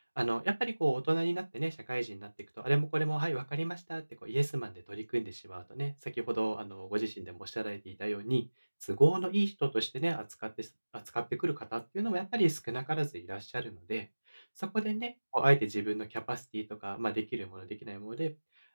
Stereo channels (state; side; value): inverted; both; correlation -1.00